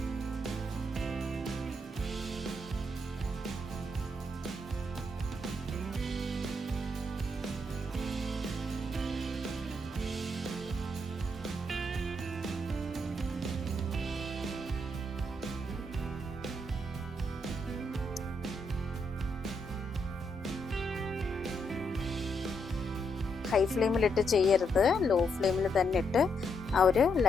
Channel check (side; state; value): both; normal; correlation 0.78